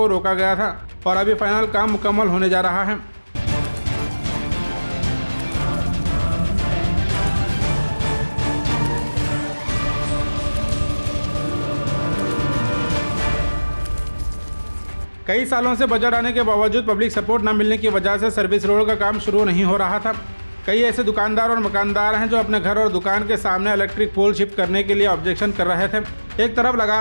रोका गया था और अभी फाइनल काम मुकम्मल होने जा रहा है। कई सालों से बजट आने के बावजूद पब्लिक सपोर्ट न मिलने की वजह से सर्विस रोड का काम शुरू नहीं हो रहा था। कई ऐसे दुकानदार और मकानदार हैं जो अपने घर और दुकान के सामने इलेक्ट्रिक पोल शिफ्ट करने के लिए ऑब्जेक्शन कर रहे थे। एक तरफ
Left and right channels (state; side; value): inverted; both; correlation -1.00